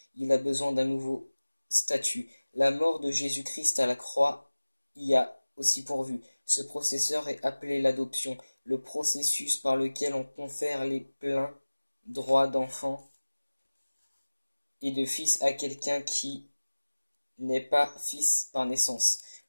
il a besoin d'un nouveau statut. La mort de Jésus-Christ à la croix y a aussi pourvu. Ce processeur est appelé l'adoption, le processus par lequel on confère les pleins droits d'enfant et de fils à quelqu'un qui n'est pas fils par naissance.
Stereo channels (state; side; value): inverted; both; correlation -1.00